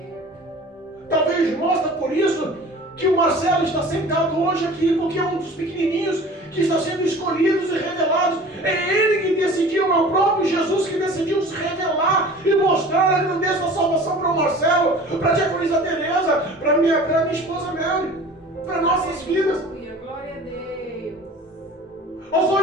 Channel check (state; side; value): normal; both; correlation 0.43